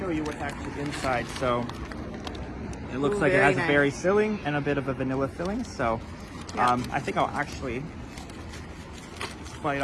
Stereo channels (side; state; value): both; identical; correlation 1.00